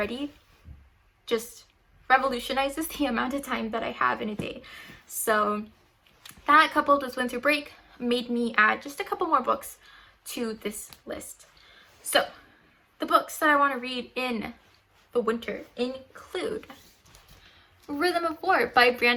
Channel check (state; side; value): identical; both; correlation 1.00